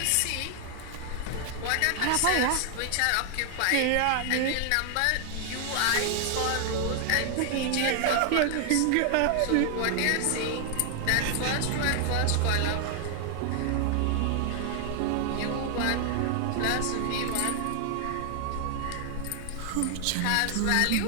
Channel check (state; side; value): different; both; correlation 0.00